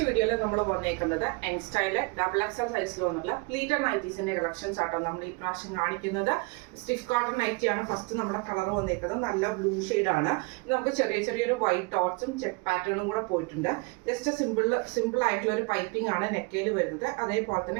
വീഡിയോയിൽ നമ്മൾ വന്നേക്കുന്നത് യങ് സ്റ്റൈലിലെ ഡബിൾ എക്സൽ സൈസിൽ വന്നിട്ടുള്ള പ്ലീറ്റഡ് നൈറ്റീസിന്റെ കളക്ഷൻസ് ആട്ടോ നമ്മൾ ഈ പ്രാവശ്യം കാണിക്കുന്നത്. സ്റ്റിഫ് കോട്ടൺ നൈറ്റിയാണ് ഫസ്റ്റ് നമ്മുടെ കളർ വന്നേക്കുന്നത്. നല്ല ബ്ലൂ ആണ്. നമുക്ക് ചെറിയൊരു വൈറ്റ് ഡോട്ട്സും ചെക്ക് പാറ്റേണും കൂടെ പോയിട്ടുണ്ട്. ജസ്റ്റ് സിമ്പിൾ ആയിട്ടുള്ള ഒരു പൈപ്പിംഗ് ആണ് നെക്കയിൽ വരുന്നത്. അതേപോലെ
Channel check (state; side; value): quieter; left; 28.4 dB